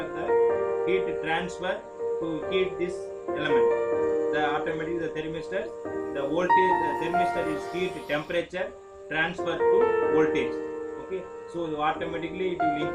the heat transfer to heat this element. The automatically the thermistor, the voltage, the thermistor is heat temperature transfer to voltage. Okay, so automatically it will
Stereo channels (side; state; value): both; identical; correlation 1.00